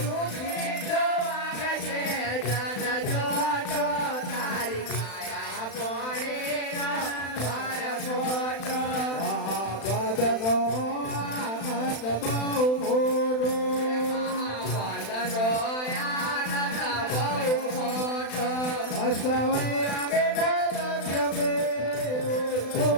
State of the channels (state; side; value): late; right; 35 ms